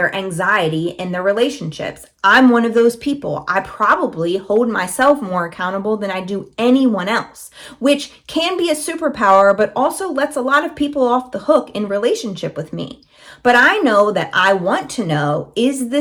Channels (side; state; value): both; identical; correlation 1.00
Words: anxiety in their relationships. I'm one of those people. I probably hold myself more accountable than I do anyone else, which can be a superpower, but also lets a lot of people off the hook in relationship with me. But I know that I want to know, is